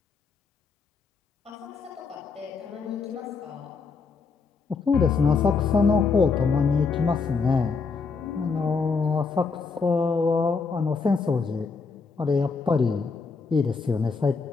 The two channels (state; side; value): quieter; right; 4.8 dB